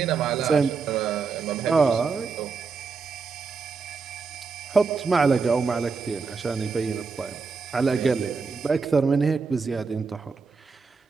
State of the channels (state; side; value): quieter; left; 4.9 dB